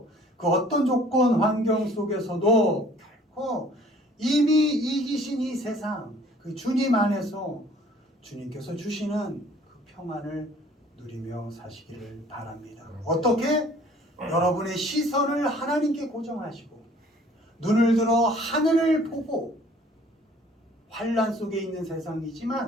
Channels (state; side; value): normal; both; correlation 0.54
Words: 그 어떤 조건 환경 속에서도 결코 이미 이기신 이 세상 그 주님 안에서 주님께서 주시는 그 평안을 누리며 사시기를 바랍니다. 어떻게? 여러분의 시선을 하나님께 고정하시고 눈을 들어 하늘을 보고 환난 속에 있는